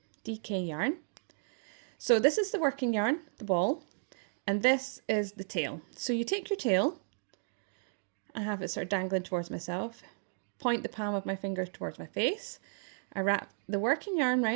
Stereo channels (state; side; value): silent; left; digital silence